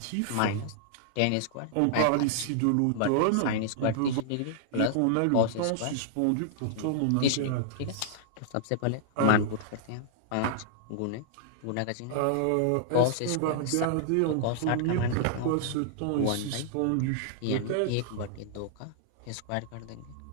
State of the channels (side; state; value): both; different; correlation -0.01